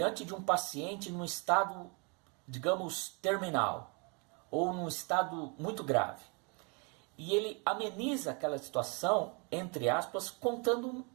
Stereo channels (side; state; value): left; quieter; 33.5 dB